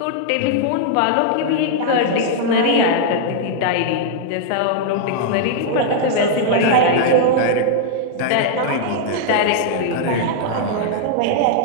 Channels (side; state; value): both; different; correlation -0.01